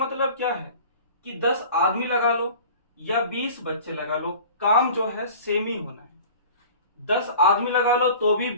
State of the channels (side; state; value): both; inverted; correlation -0.42